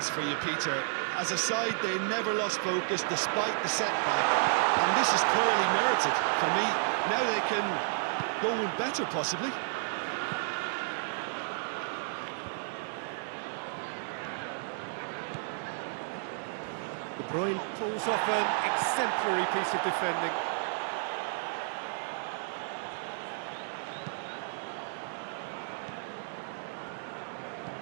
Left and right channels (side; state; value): left; silent; digital silence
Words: for you, Peter. As a side, they never lost focus despite the setback. And this is clearly merited for me. Now they can go one better, possibly. De Bruyne pulls off an exemplary piece of defending.